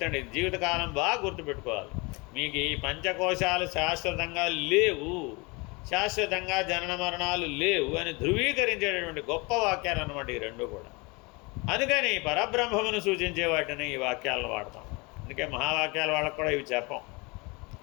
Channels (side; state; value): right; quieter; 27.3 dB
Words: అండి, జీవితకాలం బాగా గుర్తుపెట్టుకోవాలి. మీకు ఈ పంచకోశాలు శాశ్వతంగా లేవు, శాశ్వతంగా జనన మరణాలు లేవు అని ధృవీకరించేటటువంటి గొప్ప వాక్యాలు అన్నమాట ఈ రెండు కూడా. అందుకని పరబ్రహ్మమును సూచించే వాటిని ఈ వాక్యాలను వాడతాం. అందుకే మహావాక్యాలు వాళ్ళకు కూడా ఇవి చెప్పం.